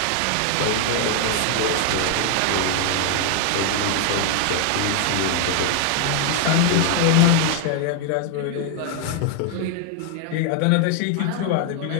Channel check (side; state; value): both; different; correlation 0.00